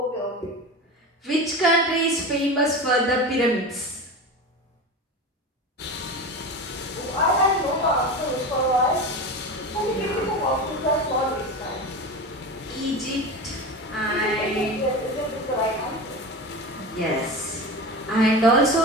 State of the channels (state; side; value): normal; both; correlation 0.27